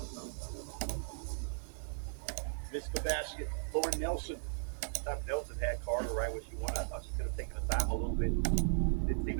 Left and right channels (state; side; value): silent; left; 53 dB below the other